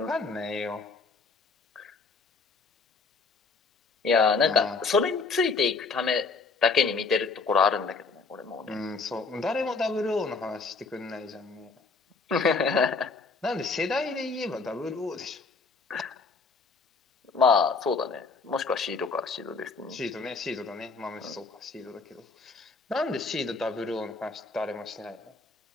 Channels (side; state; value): right; quieter; 4.3 dB